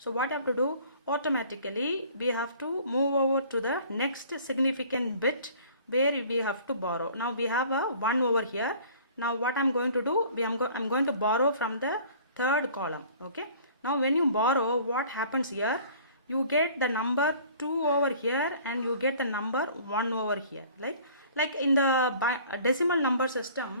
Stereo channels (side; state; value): both; inverted; correlation -0.50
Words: what you have to do, automatically we have to move over to the next significant bit where we have to borrow. Now we have a 1 over here. Now what I'm going to do, I'm going to borrow from the third column. Okay, now when you borrow, what happens here, you get the number 2 over here and you get the number 1 over here. Like in the decimal number